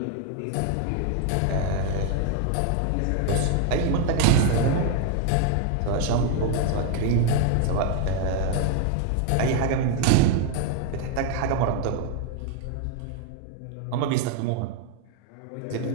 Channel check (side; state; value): both; different; correlation 0.00